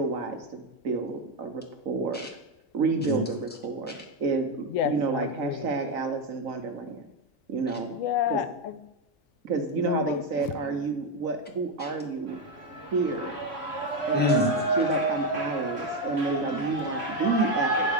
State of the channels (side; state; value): both; normal; correlation 0.08